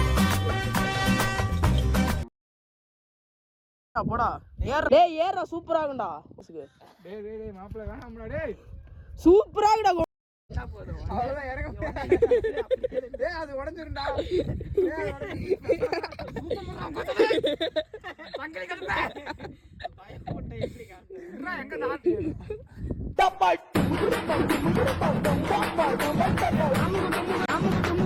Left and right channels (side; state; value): both; identical; correlation 1.00